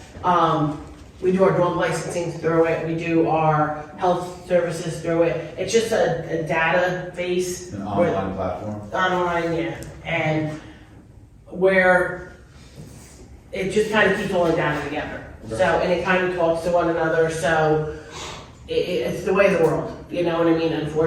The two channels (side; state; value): both; identical; correlation 1.00